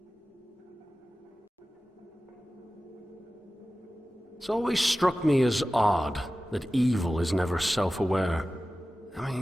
It's always struck me as odd that evil is never self-aware. I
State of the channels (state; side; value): normal; both; correlation 0.95